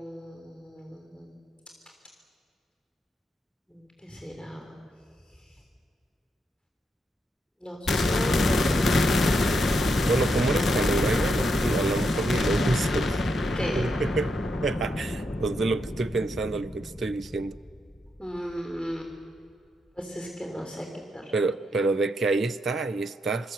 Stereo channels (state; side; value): normal; both; correlation 0.81